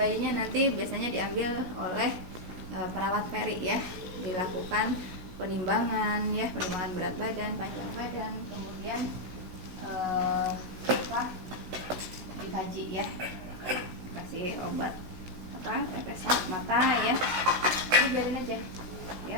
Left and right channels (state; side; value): late; left; 16 ms